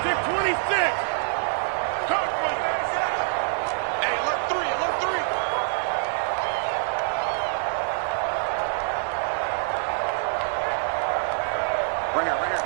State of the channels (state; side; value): silent; left; digital silence